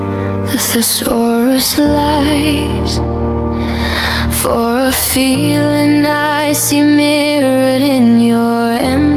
the thesaurus lies. For a feeling I see mirrored in your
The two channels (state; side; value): identical; both; correlation 1.00